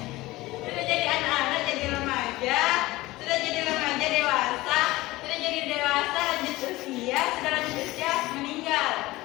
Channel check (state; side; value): quieter; right; 19.1 dB